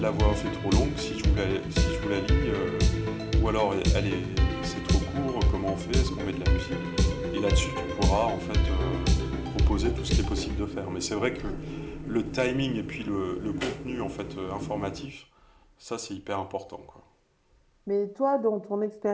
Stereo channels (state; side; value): identical; both; correlation 1.00